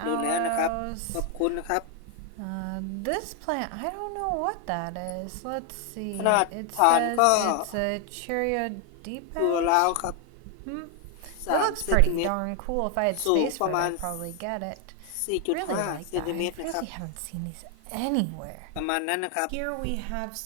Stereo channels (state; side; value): different; both; correlation 0.00